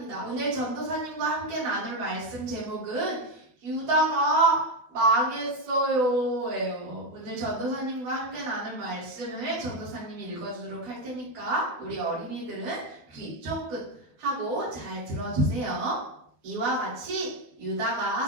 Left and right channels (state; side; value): late; left; 12 ms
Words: 오늘 전도사님과 함께 나눌 말씀 제목은 유다가 망했어요 예요. 오늘 전도사님과 함께 나눌 말씀을 전도사님이 읽어주도록 할 테니까 우리 어린이들은 귀 쫑긋 하고 잘 들어주세요. 이와 같이